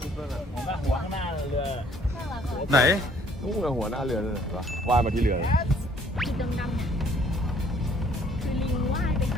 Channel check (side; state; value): both; normal; correlation 0.61